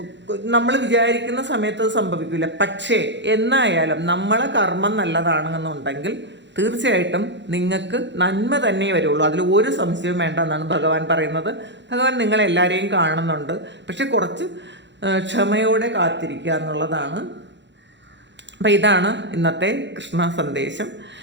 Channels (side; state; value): left; late; 0.52 ms